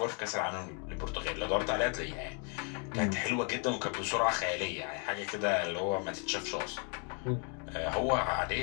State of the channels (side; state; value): right; quieter; 38.9 dB